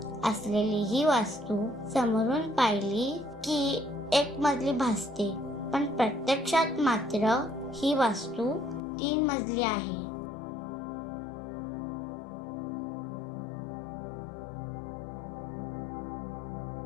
असलेली ही वास्तू समोरून पाहिली की एक मजली भासते, पण प्रत्यक्षात मात्र ही वास्तू 3 मजली आहे.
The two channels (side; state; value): right; drops out; at 8.8 s